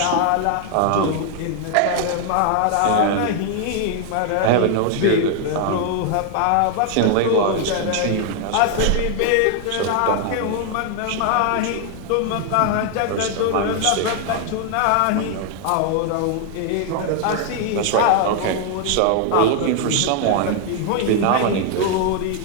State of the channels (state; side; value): different; both; correlation 0.00